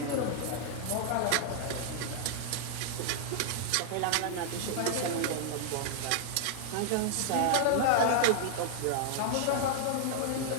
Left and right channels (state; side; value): different; both; correlation 0.00